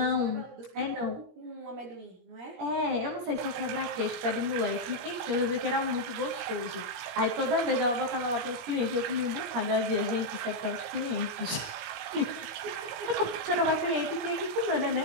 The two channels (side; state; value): left; late; 17 ms